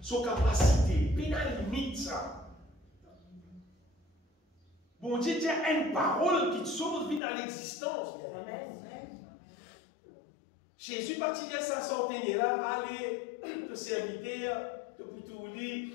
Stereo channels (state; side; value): drops out; right; at 7.2 s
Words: son capacité, il a une limite, ça. Bon Dieu, il y a une parole qui te sauve vie dans l'existence. Jésus, parti de sa santé, là, allez, le serviteur, te pour dire,